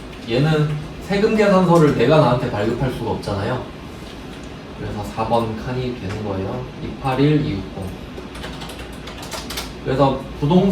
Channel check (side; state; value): both; identical; correlation 1.00